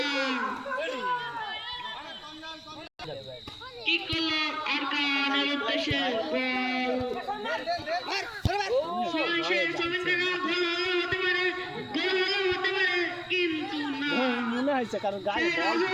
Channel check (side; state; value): both; identical; correlation 1.00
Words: কি করলো আরকানের উদ্দেশ্যে মনে হয়েছে কারণ গায়ে